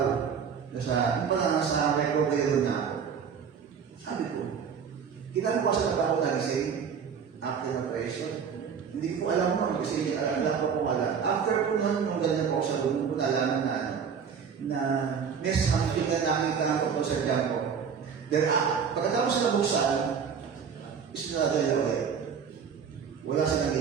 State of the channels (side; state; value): left; quieter; 6.8 dB